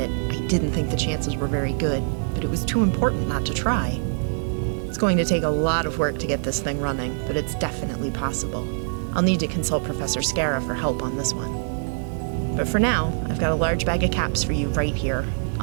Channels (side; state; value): left; silent; digital silence